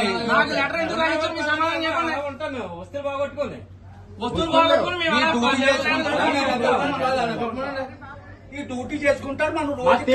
నాకు లెటర్ ఎందుకు రాయించారు? మీ సమాధానం చెప్పండి. వస్తువులు బాగొట్టుకోండి. వస్తువులు బాగొట్టుకుని ఈ డ్యూటీ చేసుకుంటారు. మనం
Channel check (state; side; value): identical; both; correlation 1.00